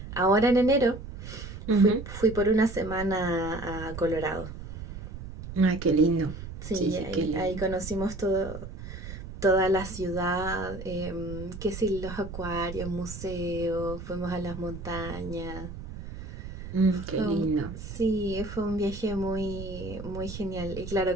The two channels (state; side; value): noise; right; rumble, 10 dB below the sound